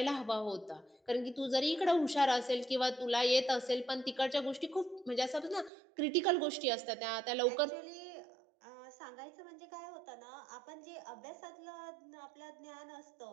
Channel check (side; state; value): left; drops out; at 5.7 s